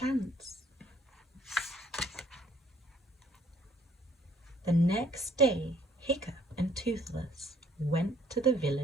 The next day, Hiccup and Toothless went to the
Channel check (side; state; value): both; normal; correlation 0.62